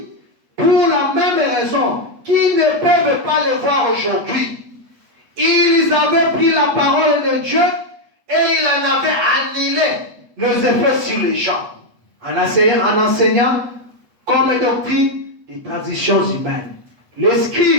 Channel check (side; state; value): left; late; 8.1 ms